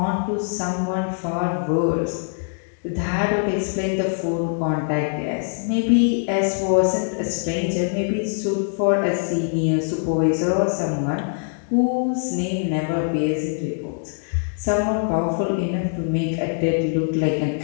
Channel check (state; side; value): silent; right; digital silence